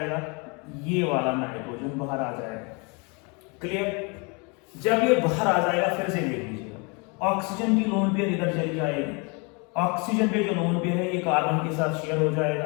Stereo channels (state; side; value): quieter; right; 31.5 dB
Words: ये वाला नाइट्रोजन बाहर आ जाएगा। क्लियर? जब ये बाहर आ जाएगा, फिर से देख लीजिएगा, ऑक्सीजन की लोन पेयर इधर चली जाएगी, ऑक्सीजन पे जो लोन पेयर है ये कार्बन के साथ शेयर हो जाएगा,